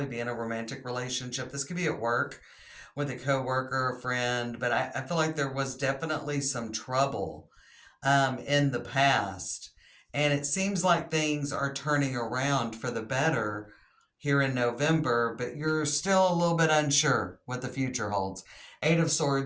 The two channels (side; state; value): both; identical; correlation 1.00